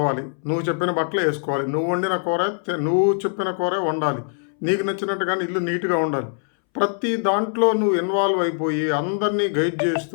నువ్వు చెప్పిన బట్టలు వేసుకోవాలి. నువ్వు వండిన కూర నువ్వు చెప్పిన కూరే వండాలి. నీకు నచ్చినట్టుగానే ఇల్లు నీట్గా ఉండాలి. ప్రతి దాంట్లో నువ్వు ఇన్వాల్వ్ అయిపోయి అందరినీ గైడ్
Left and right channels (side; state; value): right; silent; 63 dB below the other